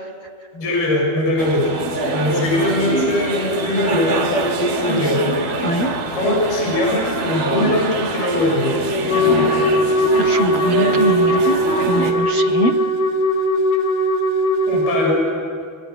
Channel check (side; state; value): right; late; 12 ms